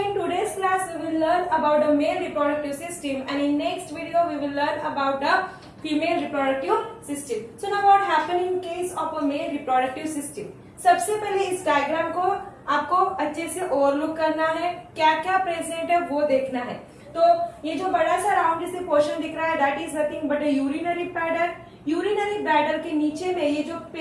today's class we will learn about the male reproductive system and in next video we will learn about the female reproductive system. So now what happen in case of a male reproductive system? सबसे पहले इस diagram को आपको अच्छे से overlook करना है, क्या क्या प्रेजेंट है वो देखना है. तो ये जो बड़ा सा राउंड जैसे पोर्शन दिख रहा है that is nothing but A urinary bladder. Urinary bladder के नीचे में ये जो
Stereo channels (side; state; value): both; identical; correlation 1.00